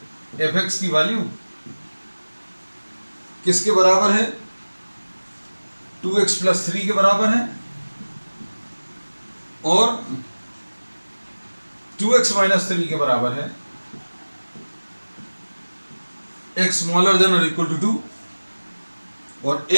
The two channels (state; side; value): inverted; both; correlation -1.00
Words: एफ एक्स की वैल्यू किसके बराबर है, 2x प्लस 3 के बराबर है, और 2x माइनस 3 के बराबर है, x स्मॉलर देन और इक्वल टू 2, और